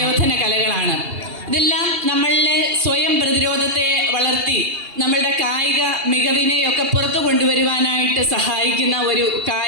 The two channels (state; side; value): late; left; 2.8 ms